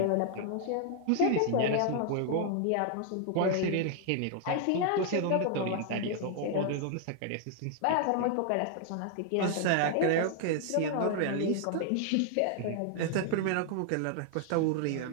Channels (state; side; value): different; both; correlation 0.00